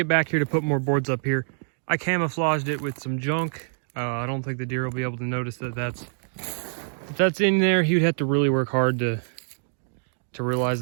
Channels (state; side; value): silent; left; digital silence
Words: back here to put more boards up here, I camouflaged it with some junk. I don't think the deer will be able to notice that if that's in there. He would have to really work hard to